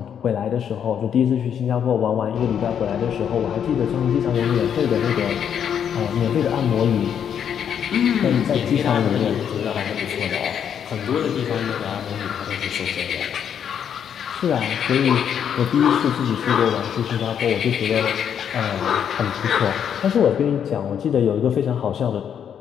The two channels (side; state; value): right; quieter; 8.5 dB